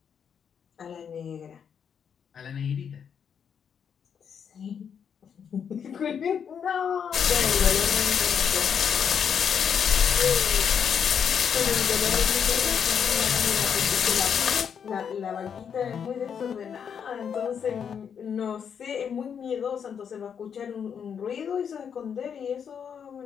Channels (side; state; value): right; quieter; 7.5 dB